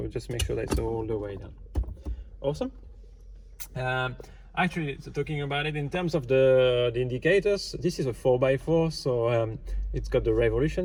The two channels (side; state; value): both; identical; correlation 1.00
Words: just make sure that it's all the way down. Awesome. Actually, so talking about it in terms of the indicators, this is a 4x4, so it's got the